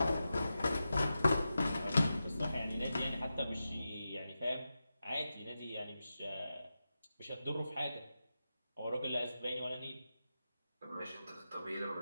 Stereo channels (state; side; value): inverted; both; correlation -0.91